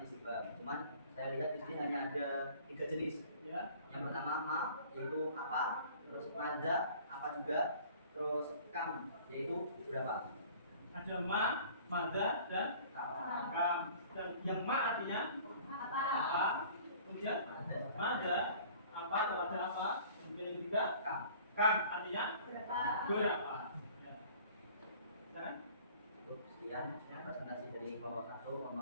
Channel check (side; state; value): both; inverted; correlation -0.49